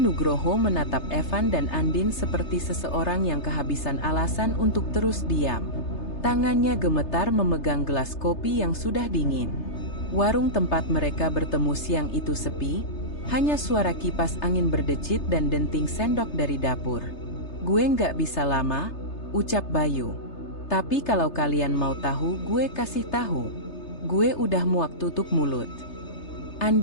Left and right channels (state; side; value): late; right; 3.3 ms